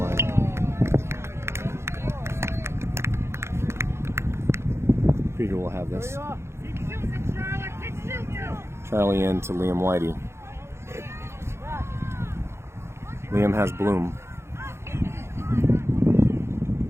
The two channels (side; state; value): left; late; 0.13 ms